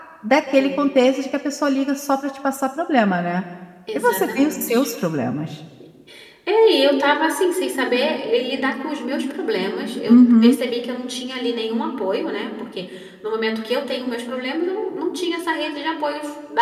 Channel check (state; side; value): identical; both; correlation 1.00